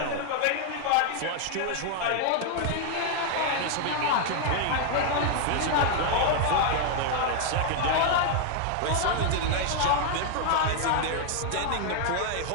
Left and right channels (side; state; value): both; different; correlation 0.00